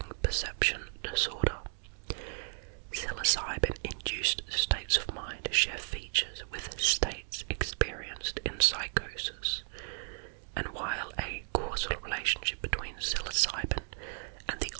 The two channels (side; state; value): left; silent; 55 dB below the other